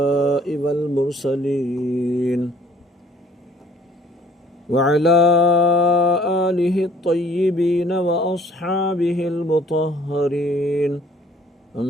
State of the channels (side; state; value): both; normal; correlation 0.57